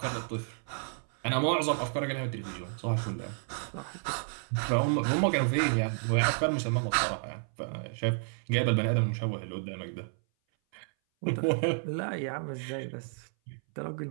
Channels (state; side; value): silent; left; 57 dB below the other